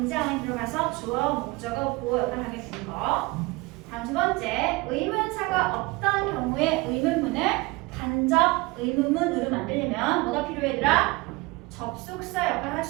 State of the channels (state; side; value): quieter; left; 23.5 dB